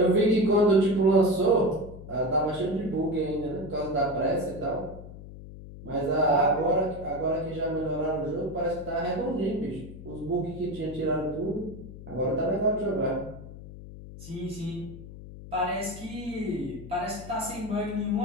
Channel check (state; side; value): noise; left; hum, 14 dB below the sound